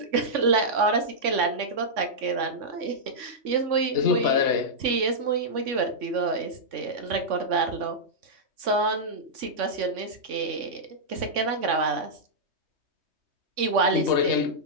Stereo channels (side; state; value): left; late; 3.5 ms